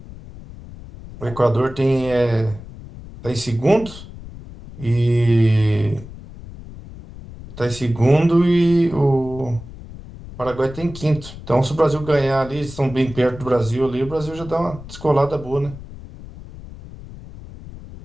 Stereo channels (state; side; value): noise; left; rumble, 15 dB below the sound